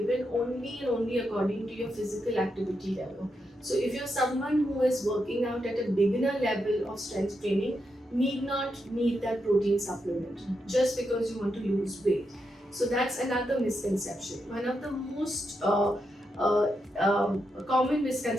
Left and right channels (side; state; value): both; normal; correlation 0.84